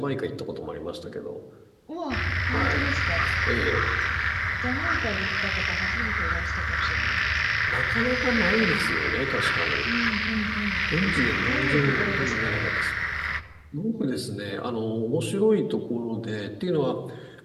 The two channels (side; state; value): both; identical; correlation 1.00